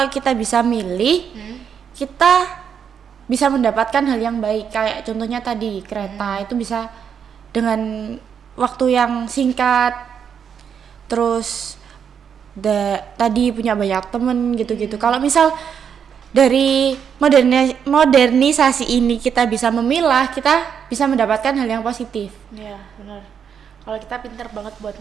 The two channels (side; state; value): left; quieter; 7.6 dB